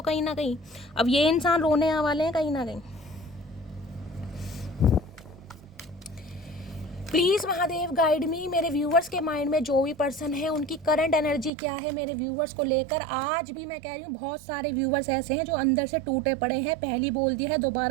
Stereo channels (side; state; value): left; drops out; at 11.5 s